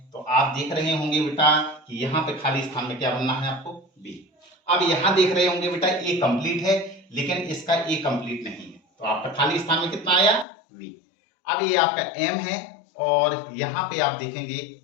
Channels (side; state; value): right; drops out; at 10.5 s